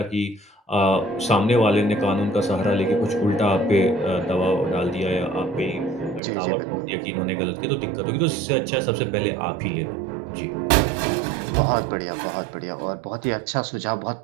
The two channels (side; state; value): left; drops out; at 6.2 s